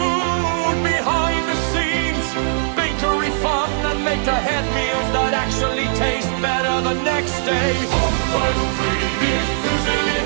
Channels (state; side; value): silent; left; digital silence